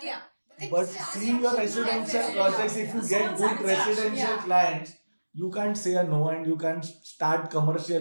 yeah. but seeing your residential projects, if you get good residential clients, you can't say a no and you can't start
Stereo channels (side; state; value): both; inverted; correlation -1.00